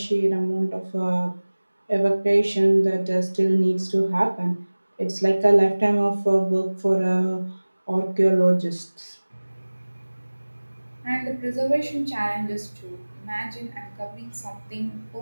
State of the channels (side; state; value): both; inverted; correlation -1.00